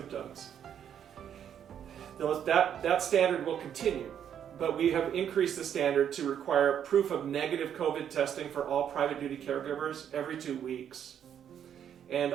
That standard will continue, but we have increased the standard to require proof of negative COVID testing for all private duty caregivers every 2 weeks. And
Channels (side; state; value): left; quieter; 9.1 dB